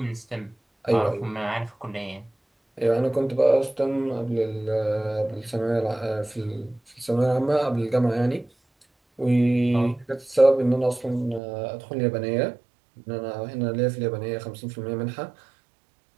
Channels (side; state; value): left; drops out; at 11.4 s